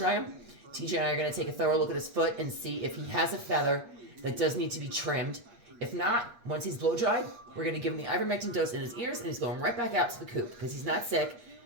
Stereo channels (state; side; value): late; left; 8.5 ms